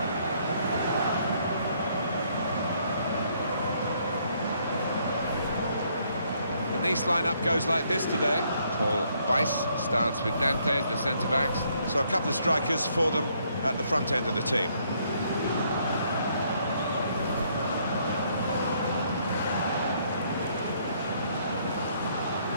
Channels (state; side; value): inverted; both; correlation -0.69